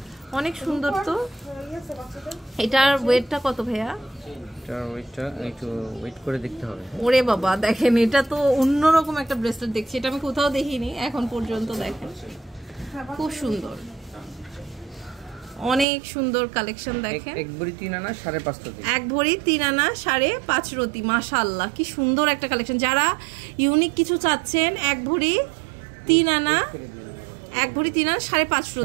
অনেক সুন্দর। তো এটার ওয়েটটা কত ভাইয়া? এটার ওয়েটটা একটু ওয়েট করে দেখতে হবে। ওরে বাবা, দেখেন এটা তো অন্যরকম একটা ব্রেসলেট দেখছি, এটা আমি কোথাও দেখিনি এখন পর্যন্ত। দেখেন খুব সুন্দর, অনেক সুন্দর কালেকশন। দেখেন এক ভরি 3 আনা 5.5 রতি, এক ভরি 3 আনা 5.5 রতি। মাশাআল্লাহ কি সুন্দর একটা কালেকশন। যারা ইউনিক কিছু চাচ্ছেন, এক ভরি 3 আনা 5.5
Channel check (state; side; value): drops out; left; at 15.9 s